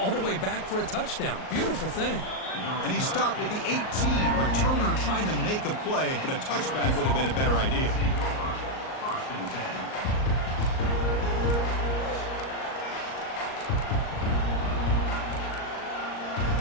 the way back for a touchdown. Beautiful thing. And he stopped with the 18. Returner trying to make a play, but a touchback would have been a better idea.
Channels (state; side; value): late; right; 38 ms